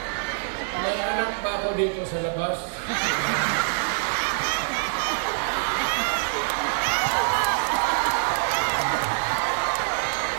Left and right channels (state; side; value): silent; left; 62 dB below the other